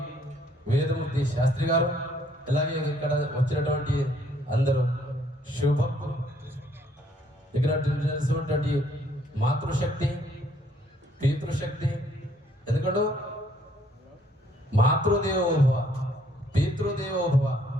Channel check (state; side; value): normal; both; correlation 0.65